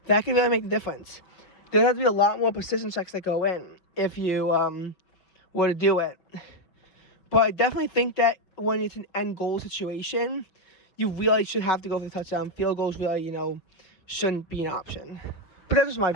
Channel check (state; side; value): late; right; 5.6 ms